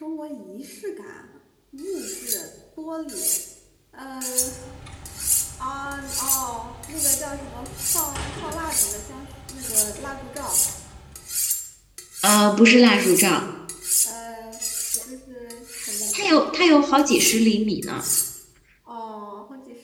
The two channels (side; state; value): both; identical; correlation 1.00